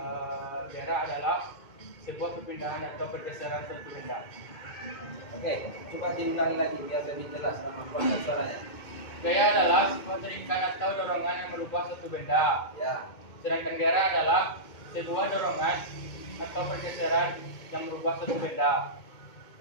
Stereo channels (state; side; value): late; right; 2.2 ms